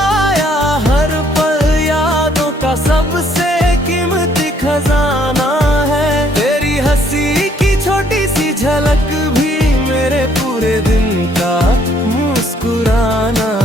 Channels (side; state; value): both; normal; correlation 0.65